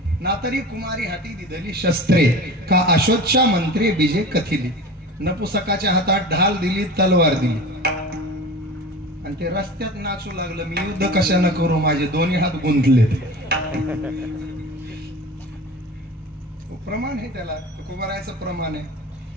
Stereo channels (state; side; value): normal; both; correlation 0.35